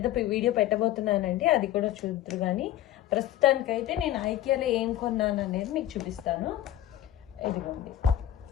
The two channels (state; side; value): quieter; right; 12.9 dB